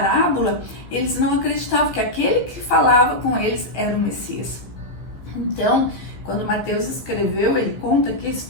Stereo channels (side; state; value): right; late; 15 ms